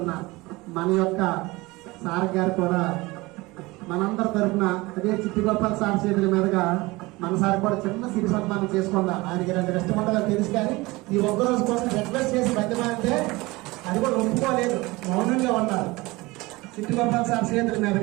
మన యొక్క సార్ గారు కూడా మనందరి తరఫున అదే చిట్టిగోపాల్ సార్ చేతుల మీదుగా మన సార్ కూడా చిన్న సిరి సన్మానం చేసుకుందాం. ఆయనకి 2 కష్టమండలు తెలుసు, కానీ ఈ ఒక్కరోజు కోసం రిక్వెస్ట్ చేసి బతిమాలంటే అది కూడా ఒప్పుకోలేదు, మౌనంగా ఉన్నారు. చిట్టిగోపాల్ సార్ చేతుల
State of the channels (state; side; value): quieter; left; 21.9 dB